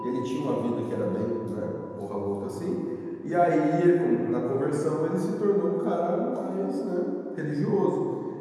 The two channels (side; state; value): both; identical; correlation 1.00